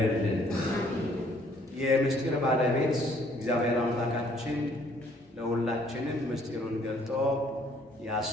የምስጢር ባለቤት እግዚአብሔር አምላካችን ለሁላችንም ምስጢሩን ገልጦ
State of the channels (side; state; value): both; normal; correlation 0.63